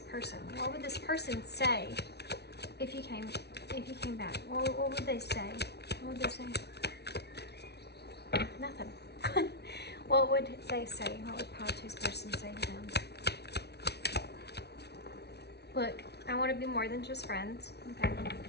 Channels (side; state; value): right; late; 0.49 ms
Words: person, what would this person say if you came back? What would they say? What would they say? Nothing. What would they say? What would pile two's person say to them? Look, I want to be more than just friends. Okay.